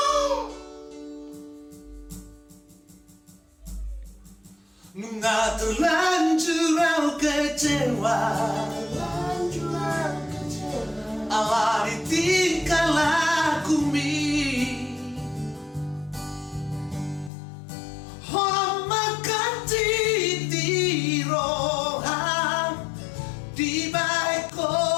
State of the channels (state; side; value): drops out; right; at 17.3 s